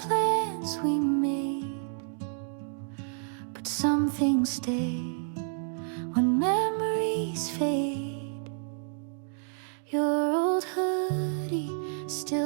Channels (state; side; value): silent; left; digital silence